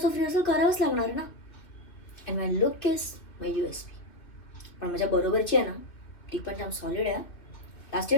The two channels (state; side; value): late; right; 2.4 ms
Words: ऑफ रिहर्सल करावंच लागणार ना. And my look is my USP. पण माझ्या बरोबरची आहे ना, ती पण जाम सॉलिड आहे. लास्ट